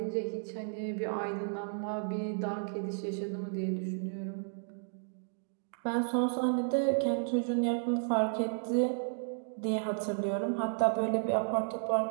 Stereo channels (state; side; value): silent; left; digital silence